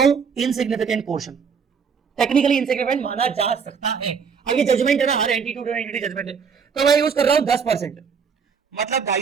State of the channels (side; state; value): left; quieter; 6.2 dB